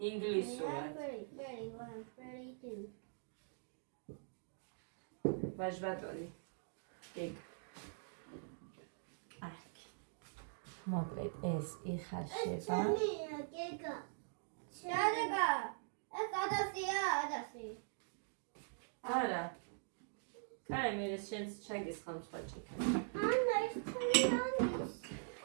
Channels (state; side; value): silent; left; digital silence